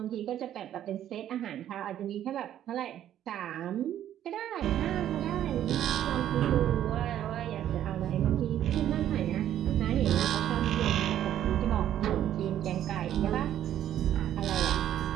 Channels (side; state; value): left; quieter; 11.3 dB